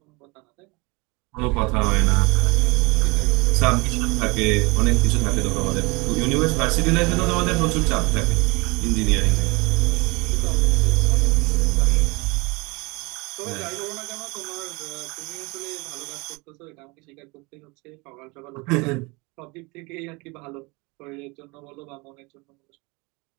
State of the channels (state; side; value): quieter; left; 26.7 dB